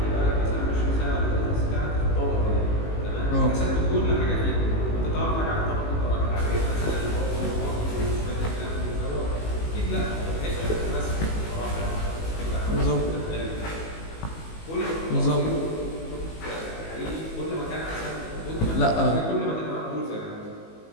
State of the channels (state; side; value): late; right; 19 ms